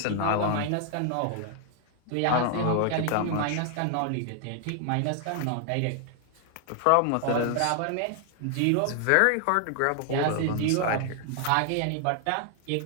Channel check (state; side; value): different; both; correlation 0.00